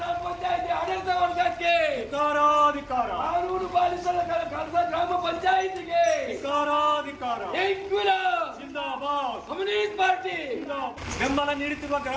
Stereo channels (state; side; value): identical; both; correlation 1.00